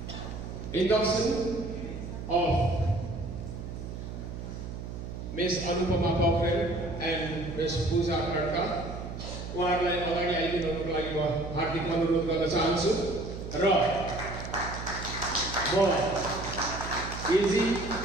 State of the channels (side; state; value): right; noise; hum, 8 dB below the sound